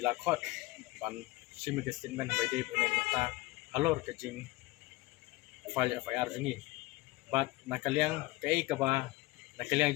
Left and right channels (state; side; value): quieter; right; 20.4 dB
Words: ila khot ban simi ke statement by day pene mata halor ka jeng file FIR jingi bat na kaliang kai ka ba na kaliang